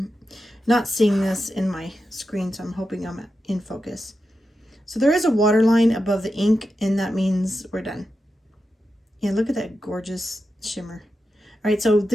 not seeing this in my screen, so I'm hoping I'm in focus. So there is a water line above the ink, and that means we're done. Yeah, look at that gorgeous shimmer. All right, so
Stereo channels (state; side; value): normal; both; correlation 0.89